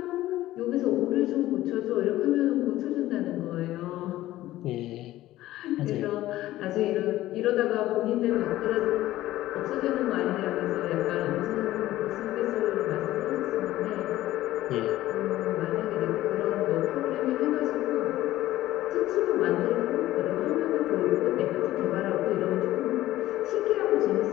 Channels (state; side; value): quieter; right; 15.3 dB